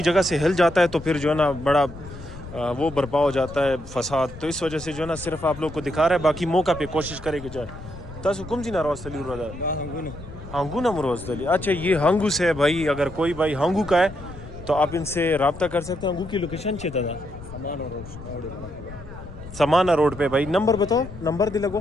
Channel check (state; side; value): noise; left; rumble, 14 dB below the sound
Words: جگہ سے ہل جاتا ہے تو پھر جو ہے نا بڑا وہ برپا ہو جاتا ہے فساد تو اس وجہ سے جو ہے نا صرف آپ لوگ کو دکھا رہا ہے باقی موقع پہ کوشش کرے کہ جائے تاسو کم جی ناراض تلی رہا ہانگو نا مروز تلی. اچھا یہ ہانگو سے ہے بھائی اگر کوئی بھائی ہانگو کا ہے تو آپ ان سے رابطہ کر سکتے ہیں. ہانگو کی لوکیشن چاہتا تھا سمانا روڈ پہ بھائی. نمبر بتاؤ نمبر دے لگو